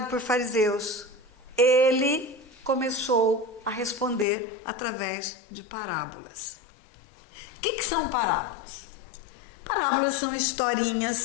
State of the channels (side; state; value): right; drops out; at 4.2 s